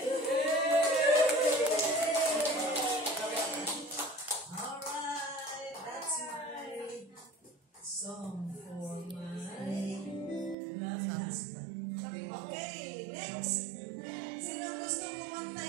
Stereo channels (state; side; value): drops out; left; at 10.6 s